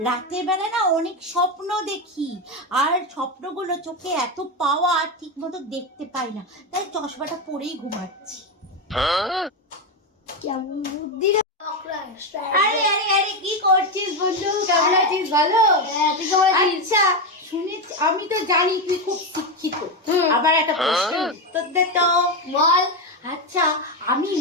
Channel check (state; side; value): normal; both; correlation 0.11